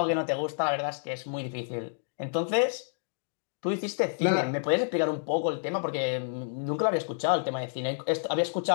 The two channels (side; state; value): right; silent; digital silence